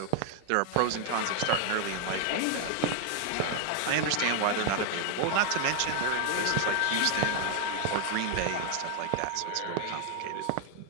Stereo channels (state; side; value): different; both; correlation 0.00